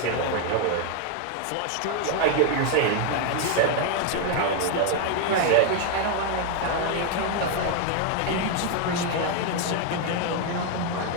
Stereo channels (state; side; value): different; both; correlation 0.01